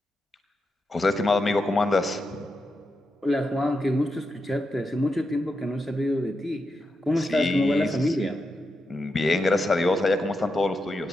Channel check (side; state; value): both; normal; correlation 0.86